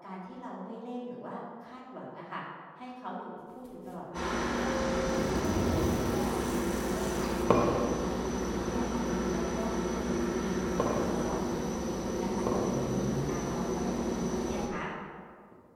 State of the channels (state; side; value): identical; both; correlation 1.00